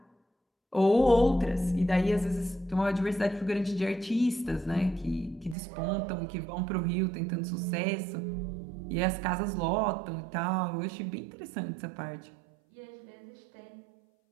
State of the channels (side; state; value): left; drops out; at 5.6 s